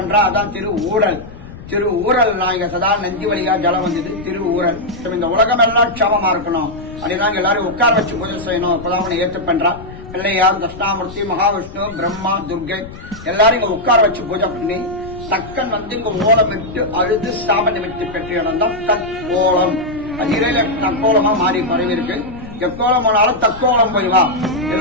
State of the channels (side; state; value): left; noise; rumble, 15 dB below the sound